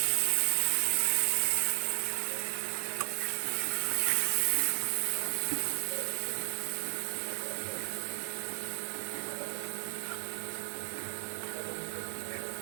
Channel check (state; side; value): silent; left; 55 dB below the other